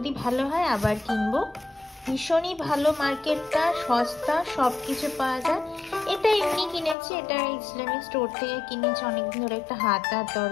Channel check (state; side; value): drops out; right; at 7.0 s